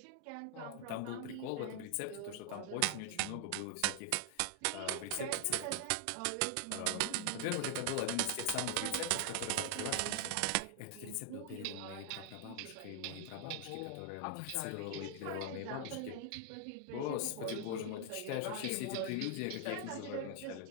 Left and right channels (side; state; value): both; different; correlation 0.00